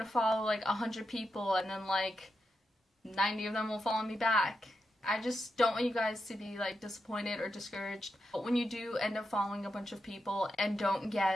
follow like 100 people and then like 90 of them will follow me back. I just don't want you guys to be like disappointed or discouraged when you do end up following a bunch of people and don't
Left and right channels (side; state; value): both; normal; correlation 0.86